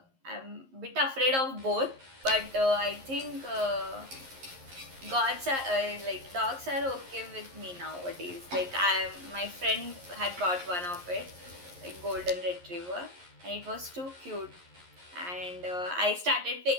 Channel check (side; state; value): left; late; 11 ms